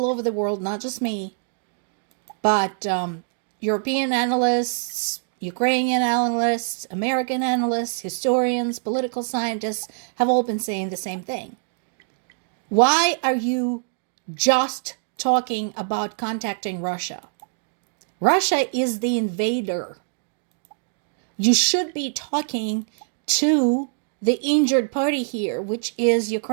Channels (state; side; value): silent; left; digital silence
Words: over the world, not just me, but European analysts, Ukrainian analysts, American analysts, historians, political scientists have all been saying the same thing. Why are you just talking about contacting Russia? Russia is the invader. You should be talking to the injured party here, which is